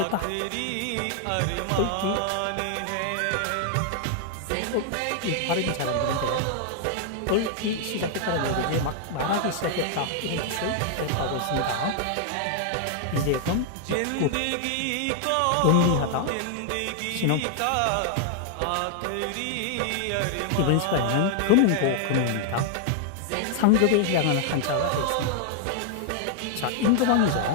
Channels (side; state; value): both; different; correlation 0.00